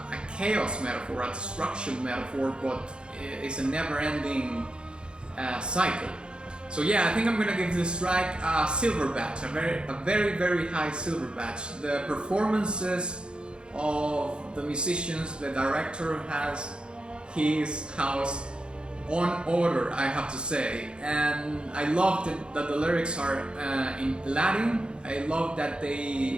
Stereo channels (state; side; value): late; left; 0.052 ms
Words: chaos metaphor, a destruction metaphor, but it's a never-ending cycle. So yeah, I think I'm gonna give this track a silver badge, a very high silver badge. The performances of the musicians, the director has his house on order, I have to say, and I love that the lyrics are in Latin. I love that